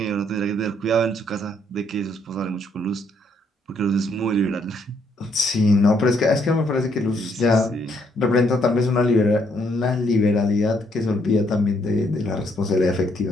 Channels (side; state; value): both; normal; correlation 0.71